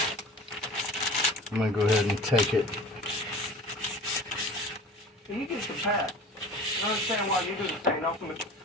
I'm gonna go ahead and take it. You get the pass. I understand why you didn't say nothing, but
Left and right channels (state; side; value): normal; both; correlation 0.40